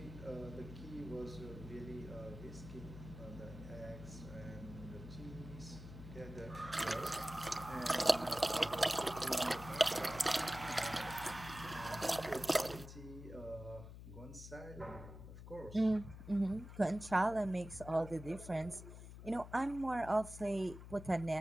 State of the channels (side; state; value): left; noise; hum, 13 dB below the sound